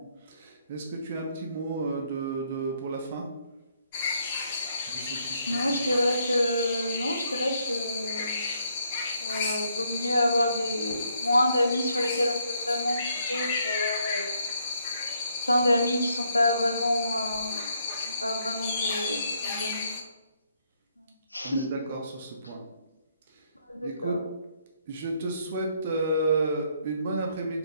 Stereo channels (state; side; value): inverted; both; correlation -0.72